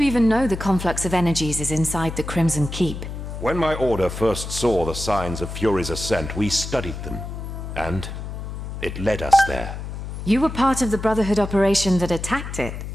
even know the conflux of energies is inside the Crimson Keep? When my order first saw the signs of Fury's ascent, we studied them. And it led us there. You were part of the Brotherhood operation that attacked it.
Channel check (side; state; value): left; noise; hum, 7 dB below the sound